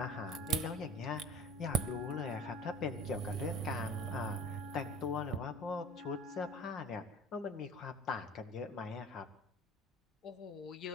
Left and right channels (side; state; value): both; normal; correlation 0.41